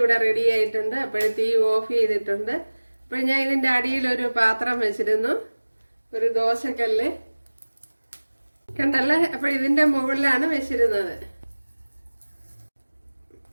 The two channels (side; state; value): both; inverted; correlation -1.00